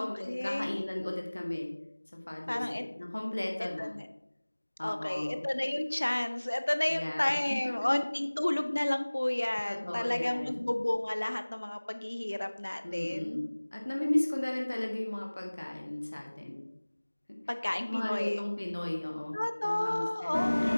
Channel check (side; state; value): both; inverted; correlation -1.00